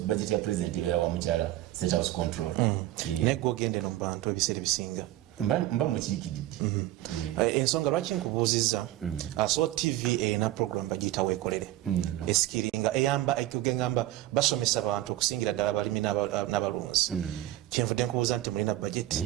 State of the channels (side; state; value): left; quieter; 15.3 dB